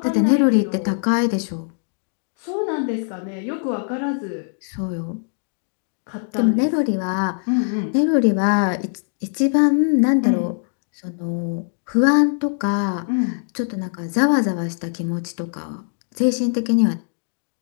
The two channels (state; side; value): silent; right; 64 dB below the other